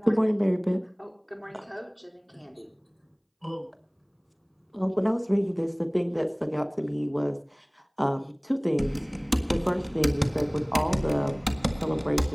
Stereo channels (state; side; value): identical; both; correlation 1.00